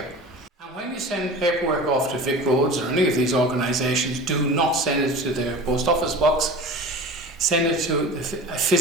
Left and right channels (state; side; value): normal; both; correlation 0.35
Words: And when you send paperwork off to Vic Roads or any of these organisations, do not send it to their post office box. Send it to a